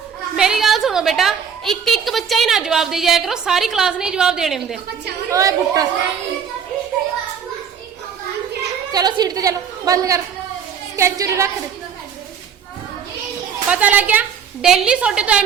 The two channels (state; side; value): quieter; left; 7.4 dB